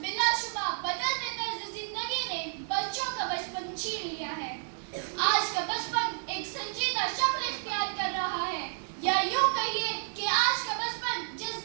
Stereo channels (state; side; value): silent; left; digital silence